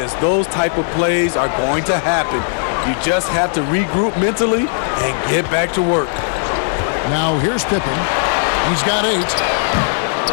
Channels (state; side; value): silent; right; digital silence